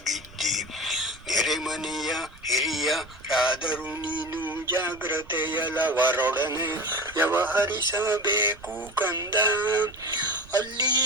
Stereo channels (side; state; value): right; noise; rumble, 21 dB below the sound